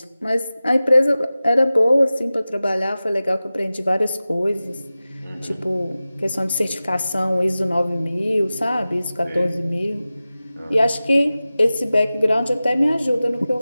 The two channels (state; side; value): inverted; both; correlation -0.96